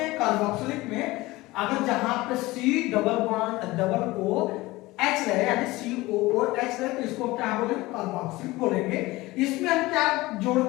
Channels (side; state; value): right; quieter; 19.9 dB